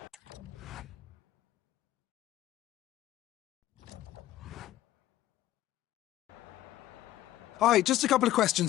Hi, just a couple of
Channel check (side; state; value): right; quieter; 14.2 dB